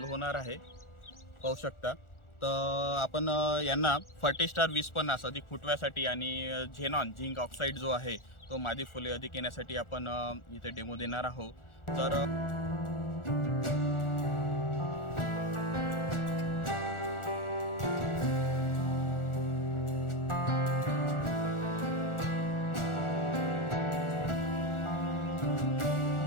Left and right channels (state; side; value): late; right; 1.4 ms